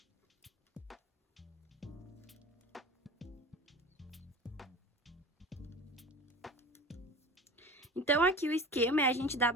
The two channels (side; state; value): both; normal; correlation 0.36